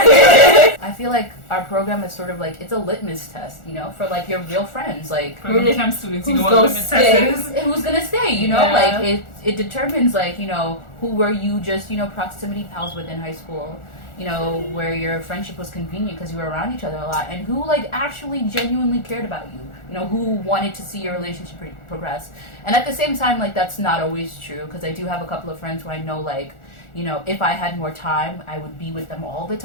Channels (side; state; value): right; late; 1.4 ms